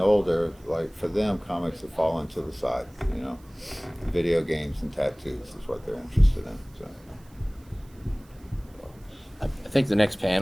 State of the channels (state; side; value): noise; right; hiss, 29 dB below the sound